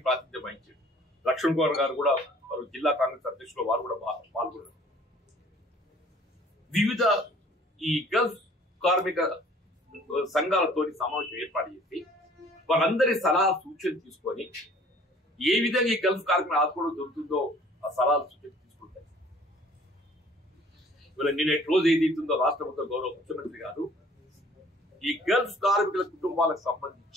ప్రాతినిధ్యం వహించారు. లక్ష్మణ్ కుమార్ గారు కూడా వారు జిల్లా కాంగ్రెస్ అధ్యక్షులు వారు కూడా పాల్గొన్నారు. వివిధ ఈ గల్ఫ్ కార్మిక సంఘాలతో సమావేశం ఏర్పాటు చేసి వారందరి సలహా సూచనలు తీసుకొని ఏ విధంగా ఈ గల్ఫ్ కార్మికులు ఆదుకోవడం దొరుకుతుందో ఆ సలహాలు సూచనలు తీసుకుంటారు. ఇవాళ నిన్నటి రోజు ఏదైతుందో రాష్ట్ర ప్రభుత్వ గౌరవ ముఖ్యమంత్రి గారు ఈ గల్ఫ్ కార్మికుల కుటుంబాలకు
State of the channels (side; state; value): both; normal; correlation 0.53